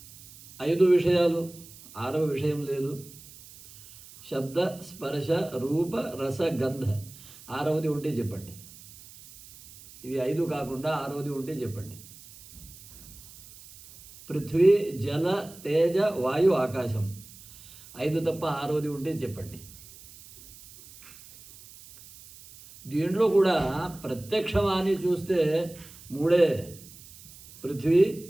5 విషయాలు, 6వ విషయం లేదు. శబ్ద, స్పర్శ, రూప, రస, గంధ. 6వది ఉంటే చెప్పండి. ఇవి 5 కాకుండా 6వది ఉంటే చెప్పండి. పృథ్వీ, జల, తేజ, వాయు, ఆకాశం. 5 తప్ప 6వది ఉంటే చెప్పండి. దీంట్లో కూడా ప్రత్యక్షమాని చూస్తే 3 పృథ్వీ,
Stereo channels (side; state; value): right; noise; hiss, 20 dB below the sound